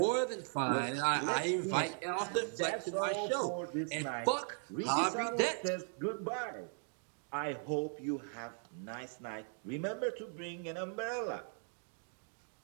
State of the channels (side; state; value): left; silent; 52 dB below the other